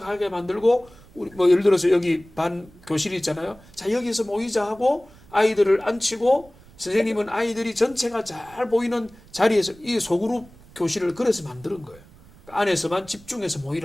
만들고 우리 뭐 예를 들어서 여기 반 교실이 있잖아요. 자 여기서 모이자 하고 아이들을 앉히고 선생님은 아이들이 전체가 잘 보이는 자리에서 이 소그룹 교실을 그래서 만드는 거예요. 안에서만 집중해서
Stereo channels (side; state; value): right; noise; rumble, 24 dB below the sound